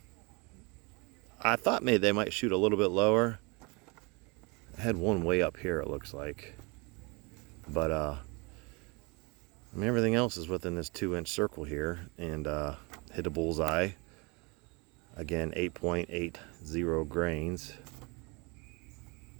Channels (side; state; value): left; quieter; 29.3 dB